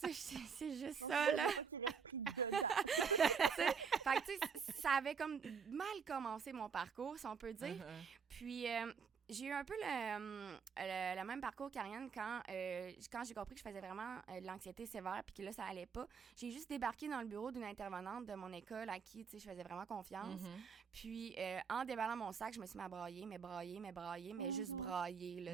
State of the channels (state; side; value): quieter; left; 6.2 dB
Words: sais, c'est juste ça, là. Je veux pas qu'il reste pris dedans. Fait que, tu sais, ça avait comme mal commencé mon parcours, si on peut dire. Puis, j'ai eu un peu le même parcours qu'Ariane quand j'ai compris que je faisais vraiment de l'anxiété sévère puis que là, ça allait pas. J'ai juste débarqué dans le bureau d'une intervenante de mon école à qui, tu sais, je faisais vraiment confiance. Puis, en déballant mon sac, je me suis mis à brailler, mais juste brailler,